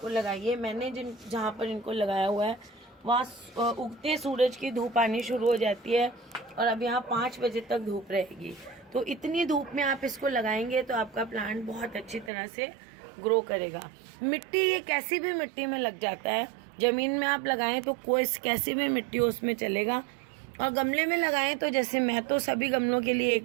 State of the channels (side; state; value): left; drops out; at 12.3 s